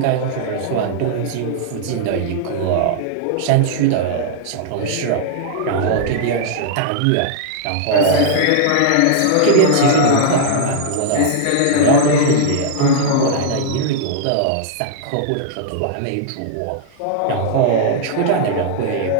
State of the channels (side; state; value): both; different; correlation -0.01